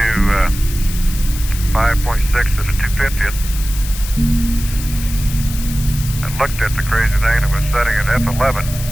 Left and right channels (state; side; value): noise; left; hiss, 11 dB below the sound